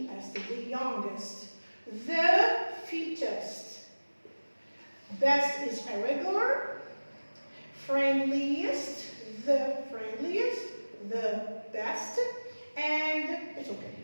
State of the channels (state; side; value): inverted; both; correlation -1.00